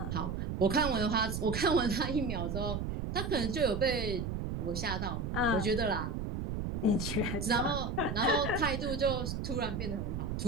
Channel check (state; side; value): noise; right; rumble, 3 dB below the sound